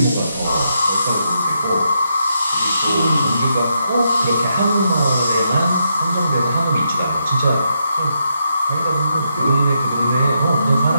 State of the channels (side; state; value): both; inverted; correlation -0.81